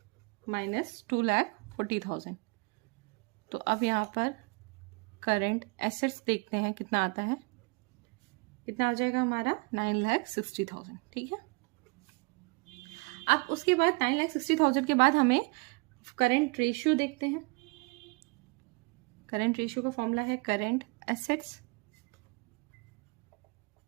minus 2,40,000। तो अब यहाँ पर करेंट एसेट्स देखते हैं कितना आता है, कितना आ जाएगा हमारा 9,60,000। ठीक है, अब उसके बाद 9,60,000 के बाद हमें करेंट रेशियो देखते हैं। करेंट रेशियो का फॉर्मूला है current assets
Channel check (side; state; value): left; quieter; 29.3 dB